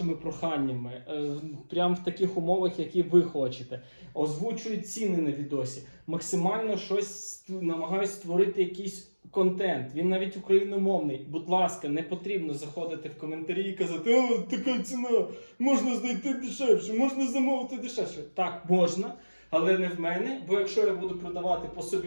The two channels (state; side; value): inverted; both; correlation -1.00